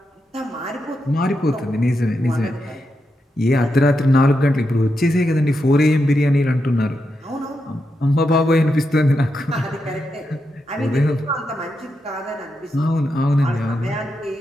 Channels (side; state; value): both; normal; correlation 0.85